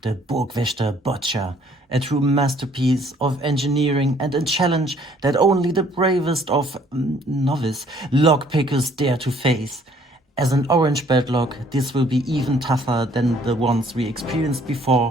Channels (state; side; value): normal; both; correlation 0.60